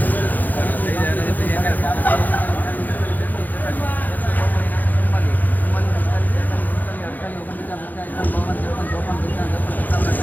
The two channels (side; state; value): right; late; 0.084 ms